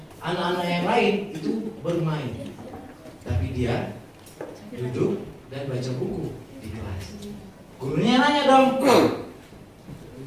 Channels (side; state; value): both; identical; correlation 1.00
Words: anak-anak yang lain itu bermain, tapi dia duduk dan baca buku di kelas. Gurunya nanya dong,